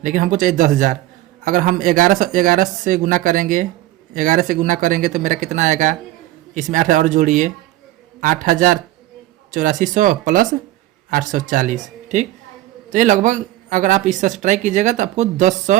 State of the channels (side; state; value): left; quieter; 15.7 dB